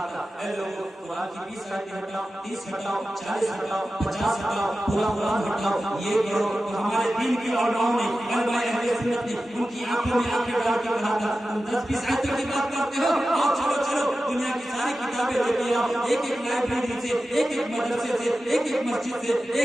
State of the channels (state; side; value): normal; both; correlation 0.94